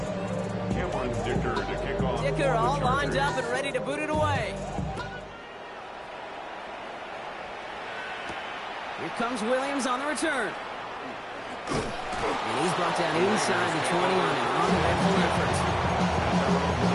Cameron Dicker to kick off. Dicker all lined up and ready to boot it away. Here comes Williams on the return. And he's brought down inside the 20 on an uneventful effort.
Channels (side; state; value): both; identical; correlation 1.00